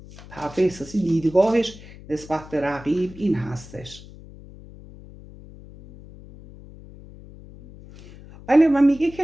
طرف احساسی دیدگاهش نسبت به رقیب این هستش. بله، و میگه که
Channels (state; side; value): noise; left; hum, 19 dB below the sound